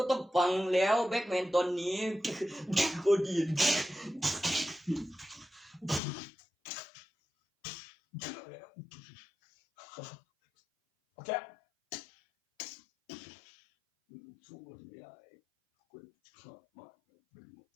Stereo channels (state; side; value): drops out; right; at 6.0 s